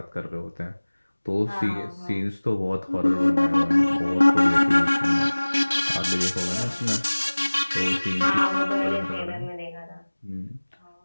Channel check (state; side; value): inverted; both; correlation -1.00